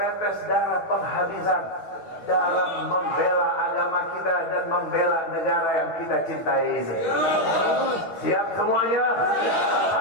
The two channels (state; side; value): late; right; 9.4 ms